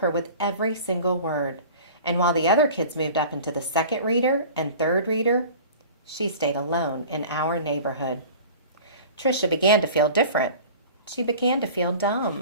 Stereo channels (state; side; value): inverted; both; correlation -0.41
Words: with every single word. And while the other kids moved up into the second reader and third reader, she stayed alone in Our Neighborhood. Tricia began to feel different. She began to feel